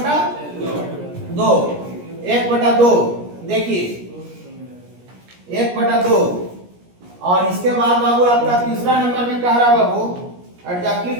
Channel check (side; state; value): left; late; 17 ms